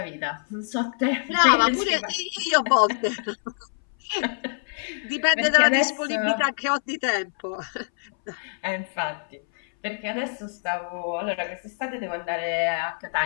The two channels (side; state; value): right; silent; 62 dB below the other